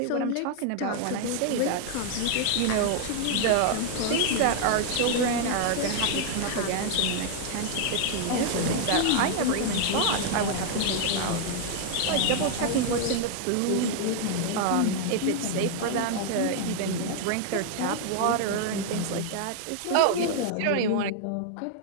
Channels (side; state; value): both; different; correlation 0.00